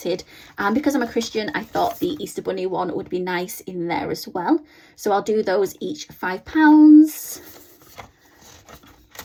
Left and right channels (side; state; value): both; identical; correlation 1.00